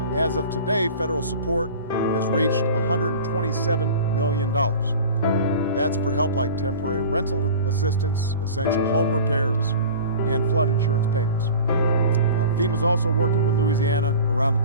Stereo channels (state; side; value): inverted; both; correlation -0.39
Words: As of today, federal support has reached $127 million. That's for help like temporary rental assistance, essential home repairs, and flood insurance payments. FEMA is also working with Louisiana around the